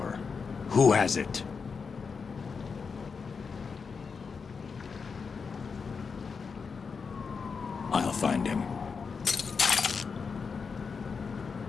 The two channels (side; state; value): right; quieter; 5.4 dB